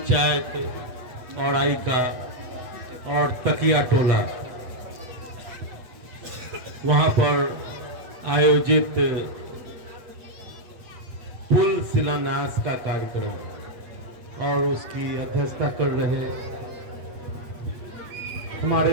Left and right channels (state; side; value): late; left; 8.3 ms